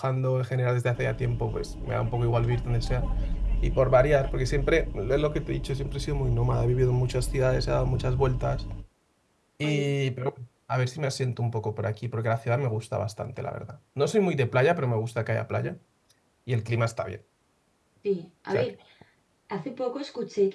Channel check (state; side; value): identical; both; correlation 1.00